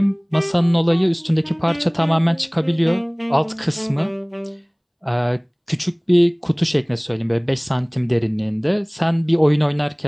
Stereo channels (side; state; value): both; identical; correlation 1.00